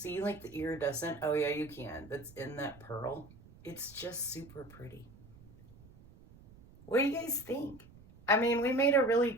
like the iridescent? Oh yeah, you can. That's in that pearl. It's just super pretty. What do you guys think? I mean, we made a really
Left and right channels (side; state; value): right; noise; rumble, 22 dB below the sound